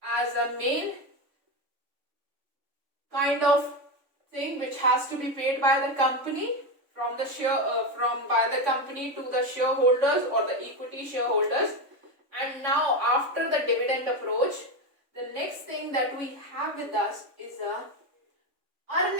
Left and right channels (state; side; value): late; left; 3.5 ms